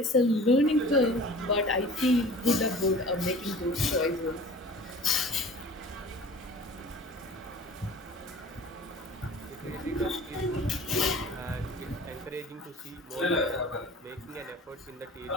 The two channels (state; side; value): normal; both; correlation 0.43